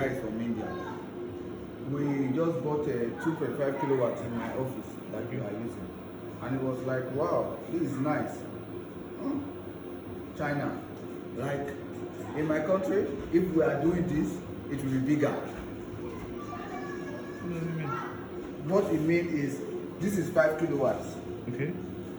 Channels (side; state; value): both; identical; correlation 1.00